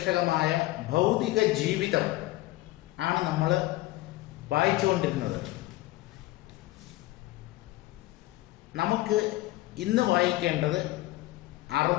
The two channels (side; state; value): right; quieter; 18.0 dB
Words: ഭൗതിക ജീവിതം ആണ് നമ്മൾ വായിച്ചുകൊണ്ടിരുന്നത്. നമുക്ക് ഇന്ന് വായിക്കേണ്ടത്